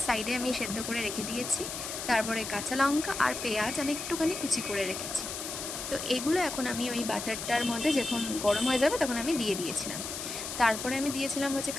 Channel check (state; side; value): noise; left; hiss, 6 dB below the sound